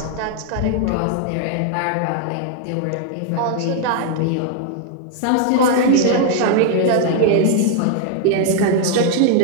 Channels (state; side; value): different; both; correlation 0.00